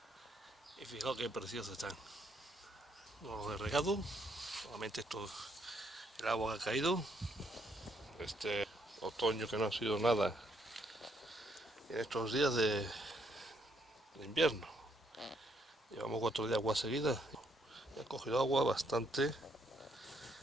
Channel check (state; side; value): normal; both; correlation 0.72